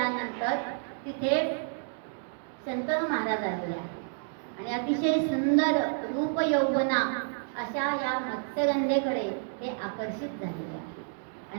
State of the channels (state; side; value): silent; left; digital silence